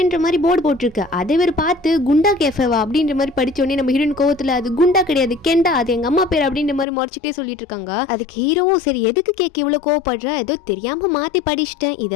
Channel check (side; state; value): right; drops out; at 6.9 s